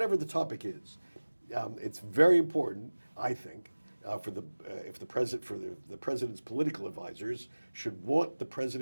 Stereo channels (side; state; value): both; inverted; correlation -1.00